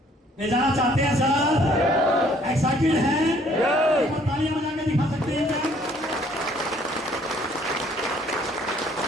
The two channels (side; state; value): both; normal; correlation 0.61